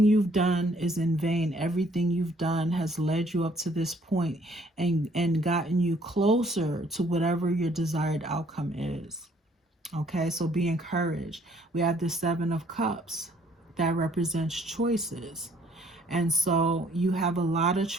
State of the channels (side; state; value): both; normal; correlation 0.62